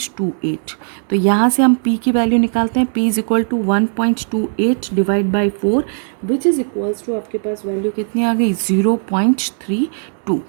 तो यहाँ से हम p की वैल्यू निकालते हैं, p is equal to 1.28 divide by 4 which is equals to आपके पास वैल्यू कितनी आ गई 0.32।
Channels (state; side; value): silent; left; 68 dB below the other